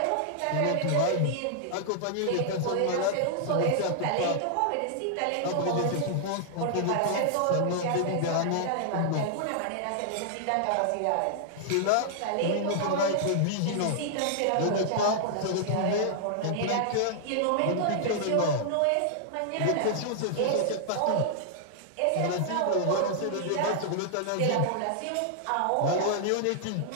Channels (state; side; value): different; both; correlation -0.01